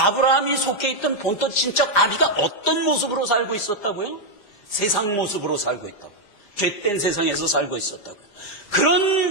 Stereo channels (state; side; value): late; right; 4.9 ms